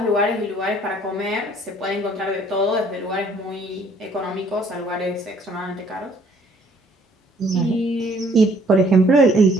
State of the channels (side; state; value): both; normal; correlation 0.60